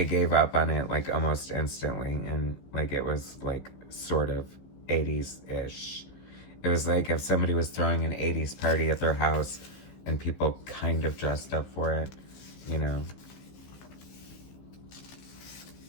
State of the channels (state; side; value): late; right; 15 ms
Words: gave up on it like almost instantly, and like it was like sort of 80s-ish. It was like if somebody was throwing an 80s party at their house and people kind of dressed up for it, you know.